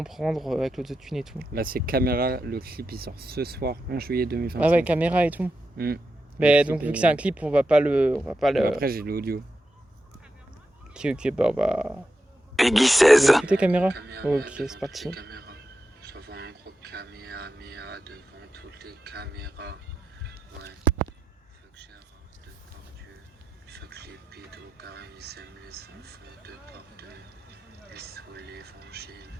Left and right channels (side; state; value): both; normal; correlation 0.88